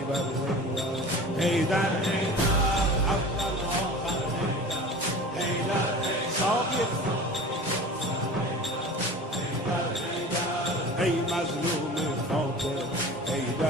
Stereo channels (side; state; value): both; normal; correlation 0.38